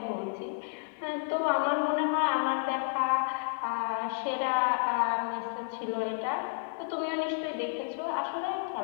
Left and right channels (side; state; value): right; silent; digital silence